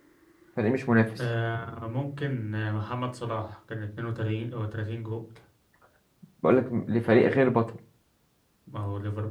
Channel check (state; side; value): identical; both; correlation 1.00